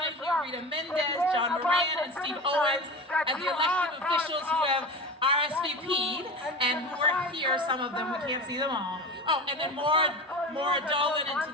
Rita Mendez, John Moran, and Steve Owens as the elected officials who have RSVP'd and who are here, some of them, we can't see them all. Oh, and then Maura Dolan and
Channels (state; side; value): normal; both; correlation 0.29